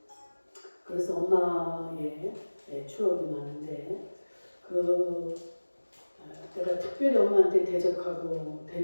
그래서 엄마의 추억이 많은데 내가 특별히 엄마한테 대적하고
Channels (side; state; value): both; inverted; correlation -1.00